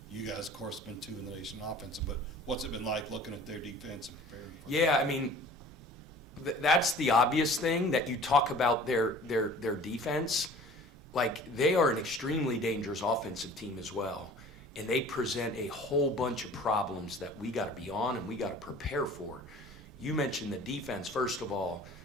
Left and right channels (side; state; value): both; normal; correlation 0.46